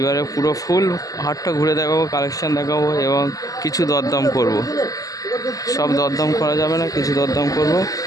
পুরো ফুল হাটটা ঘুরে দেখাবো, কালেকশান দেখাবো এবং কিছু দরদাম করব। সব দরদাম করা যাবে না, কিছু দরদাম করব।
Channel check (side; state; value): right; late; 0.17 ms